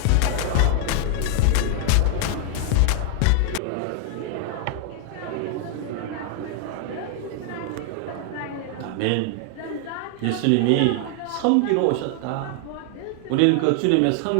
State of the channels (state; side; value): different; both; correlation 0.00